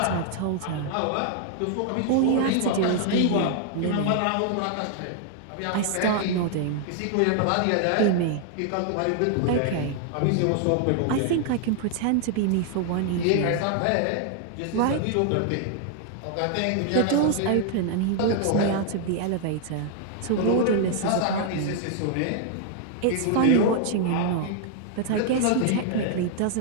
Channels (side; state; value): both; different; correlation 0.00